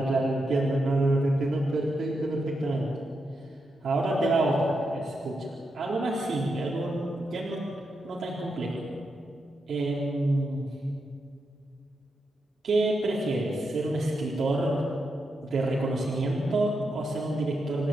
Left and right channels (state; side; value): normal; both; correlation 0.85